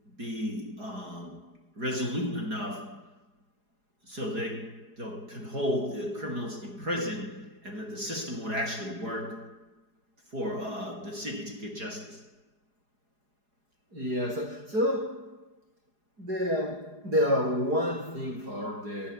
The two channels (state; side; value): late; left; 4.8 ms